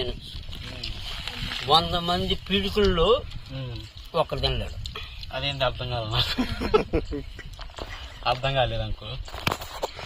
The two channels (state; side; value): identical; both; correlation 1.00